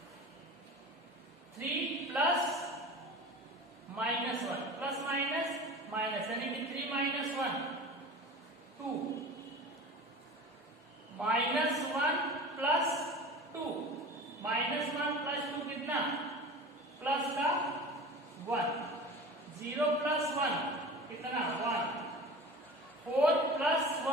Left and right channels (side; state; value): both; normal; correlation 0.36